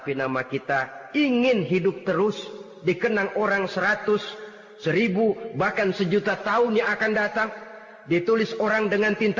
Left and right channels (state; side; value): identical; both; correlation 1.00